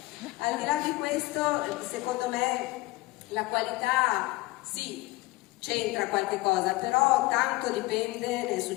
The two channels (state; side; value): quieter; right; 20.7 dB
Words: Al di là di questo, secondo me la qualità sì, c'entra qualche cosa, però tanto dipende del